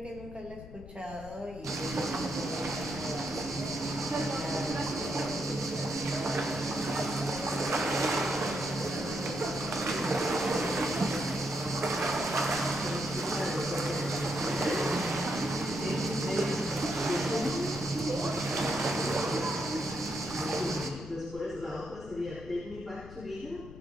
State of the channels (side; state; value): left; noise; rumble, 15 dB below the sound